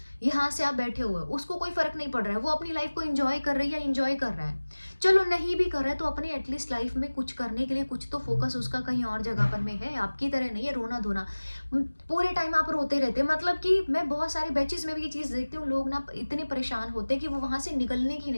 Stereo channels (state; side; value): inverted; both; correlation -1.00